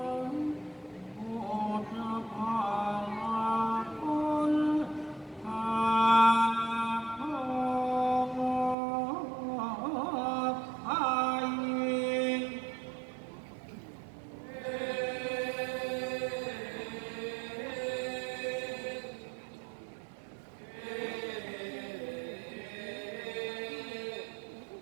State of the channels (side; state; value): left; drops out; at 8.8 s